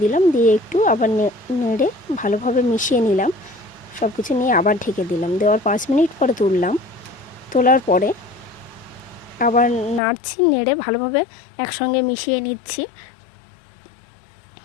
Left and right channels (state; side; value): drops out; right; at 10.0 s